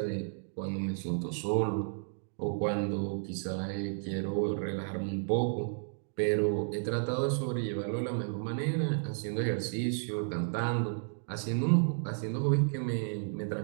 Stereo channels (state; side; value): silent; left; digital silence